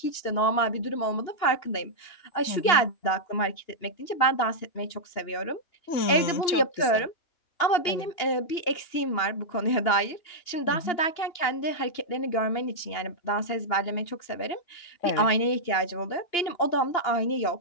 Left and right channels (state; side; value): late; right; 2.9 ms